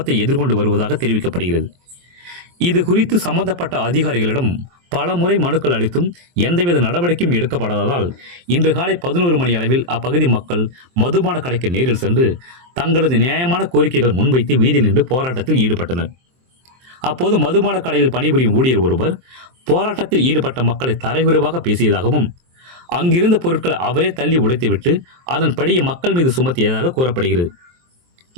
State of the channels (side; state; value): left; late; 23 ms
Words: எதிர்கொண்டு வருவதாக தெரிவிக்கப்படுகிறது. இது குறித்து சம்பந்தப்பட்ட அதிகாரிகளிடம் பல முறை மனுக்கள் அளித்தும் எந்தவித நடவடிக்கையும் எடுக்கப்படாததால் இன்று காலை 11 மணி அளவில் அப்பகுதி மக்கள் மதுபான கடைக்கு நேரில் சென்று தங்களது நியாயமான கோரிக்கைகள் முன்வைத்து வீதியில் நின்று போராட்டத்தில் ஈடுபட்டனர். அப்போது மதுபான கடையில் பணிபுரியும் ஊழியர் ஒருவர் போராட்டத்தில் ஈடுபட்ட மக்களை தரைகுறைவாக பேசியதாகவும் அங்கிருந்த பொருட்களை அவரே தள்ளி உடைத்துவிட்டு அதன்படியே மக்கள் மீது சுமத்தியதாக கூறப்படுகிறது.